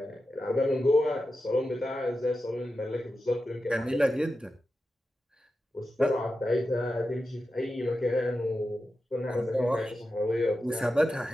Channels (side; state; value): both; normal; correlation 0.91